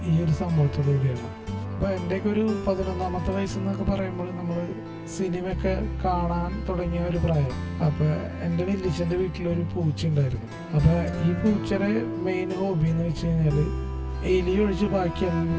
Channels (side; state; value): both; identical; correlation 1.00